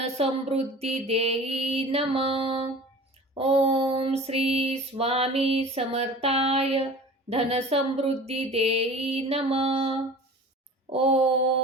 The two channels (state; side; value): normal; both; correlation 0.40